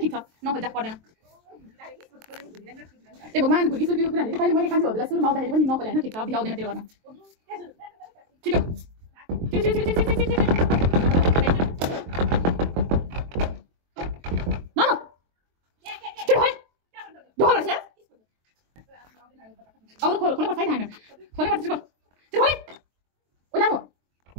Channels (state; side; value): late; left; 23 ms